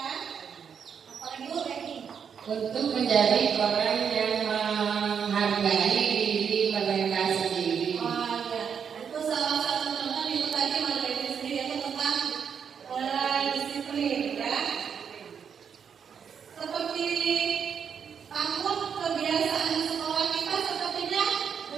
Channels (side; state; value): left; quieter; 7.2 dB